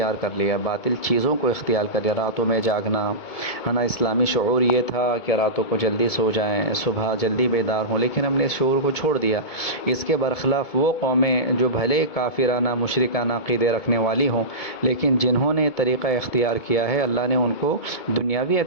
کر لیا، باطل چیزوں کو اختیار کر لیا، راتوں میں جاگنا، ہے نا۔ اسلامی شعور یہ تھا کہ راتوں کو جلدی سو جائیں، صبح جلدی بیدار ہوں، لیکن ہم نے اس شعور کو چھوڑ دیا۔ اس کے برخلاف وہ قومیں جو بھلے کافرانہ مشرکانہ عقیدے رکھنے والی ہوں، لیکن جنہوں نے طریقہ اختیار کیا ہے، اللہ نے ان کو دنیاوی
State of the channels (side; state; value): right; late; 2.2 ms